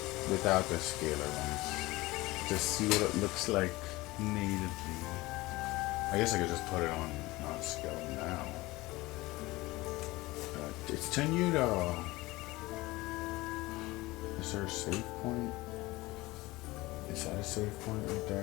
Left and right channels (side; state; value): right; quieter; 20.4 dB